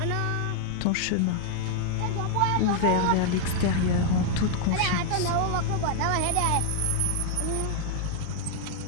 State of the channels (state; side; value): different; both; correlation 0.00